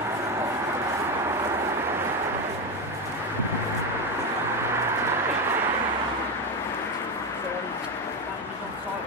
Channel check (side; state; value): both; normal; correlation 0.13